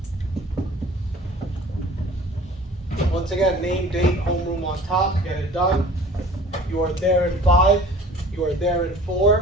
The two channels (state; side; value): normal; both; correlation 0.46